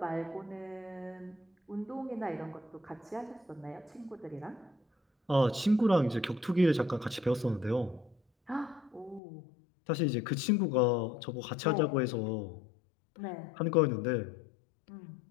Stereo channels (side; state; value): right; drops out; at 9.2 s